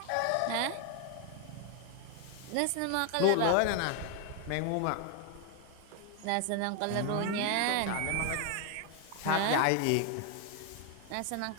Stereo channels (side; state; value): both; different; correlation 0.01